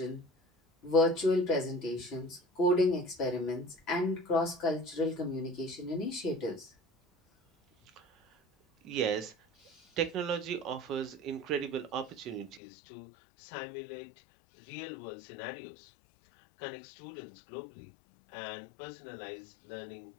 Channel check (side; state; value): right; drops out; at 12.6 s